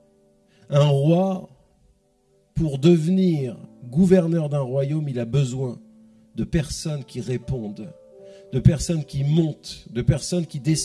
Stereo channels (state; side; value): identical; both; correlation 1.00